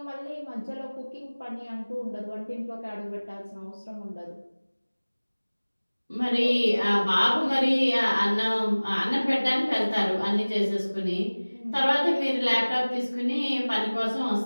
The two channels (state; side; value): inverted; both; correlation -1.00